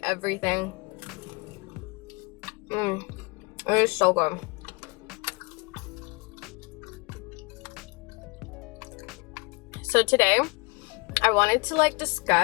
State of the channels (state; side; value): quieter; right; 27.5 dB